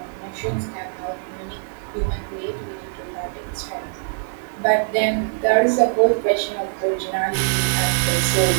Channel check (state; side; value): silent; left; digital silence